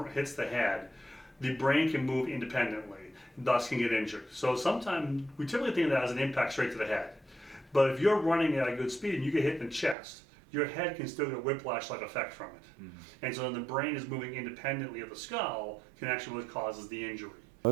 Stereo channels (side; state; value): left; drops out; at 10.0 s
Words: head, the brain can move independently, thus can get injured. So sometimes we typically think of that as an impact straight to the head. But if you're running at a good speed and you get hit in the chest, your head can still get a whiplash-like effect from it. And so then the brain is moving independently of the skull can actually what causes the injury.